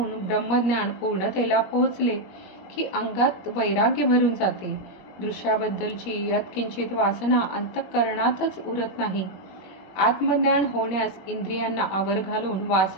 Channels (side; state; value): right; late; 21 ms